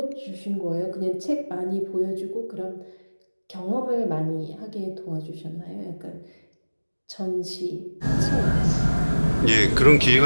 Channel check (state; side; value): inverted; both; correlation -1.00